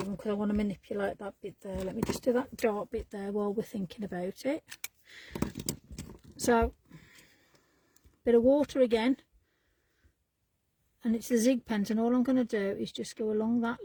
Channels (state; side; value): identical; both; correlation 1.00